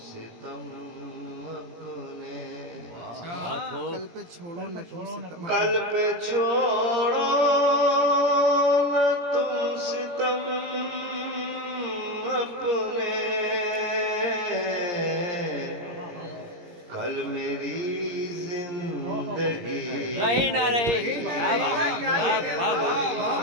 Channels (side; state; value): left; late; 17 ms